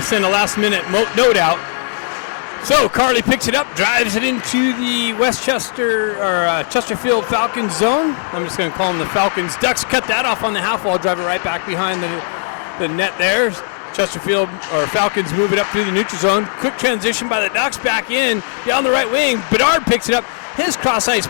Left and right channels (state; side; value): silent; right; digital silence